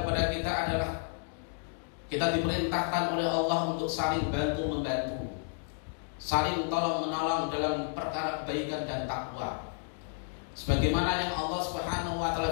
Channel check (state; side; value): silent; right; digital silence